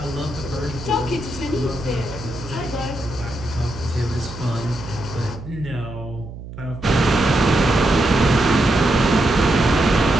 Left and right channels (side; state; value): right; noise; hum, 13 dB below the sound